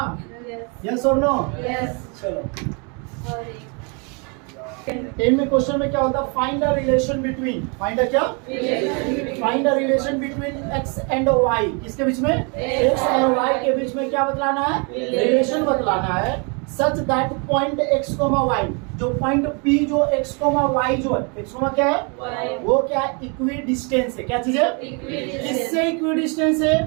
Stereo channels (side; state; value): left; quieter; 34.3 dB